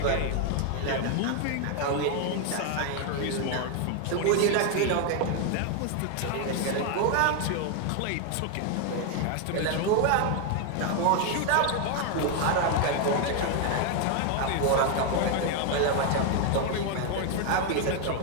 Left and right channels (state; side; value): different; both; correlation 0.01